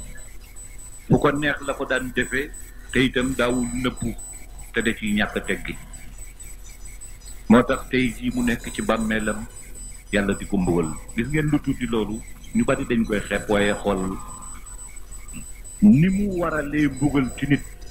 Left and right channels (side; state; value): both; identical; correlation 1.00